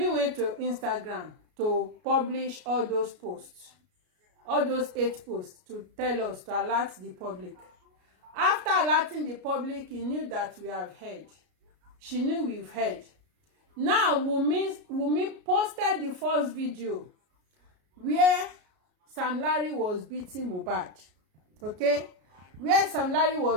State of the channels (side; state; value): left; late; 33 ms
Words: went to Instagram to publish all those posts, all those 8 posts, to tell us, to alert the public. After alerting the public, he knew that we have heard. She knew we've heard. Now, Wunmi posted the first video where Sam Larry was beating Muhbad. Okay? Where Sam Larry